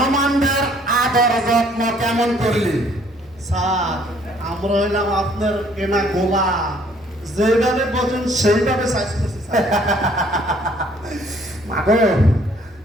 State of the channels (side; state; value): both; normal; correlation 0.61